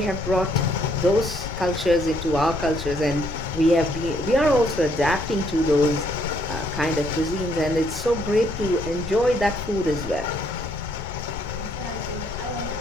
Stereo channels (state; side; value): noise; left; rumble, 10 dB below the sound